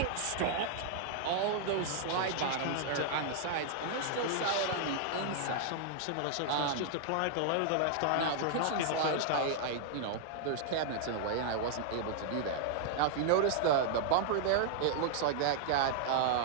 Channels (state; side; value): different; both; correlation -0.01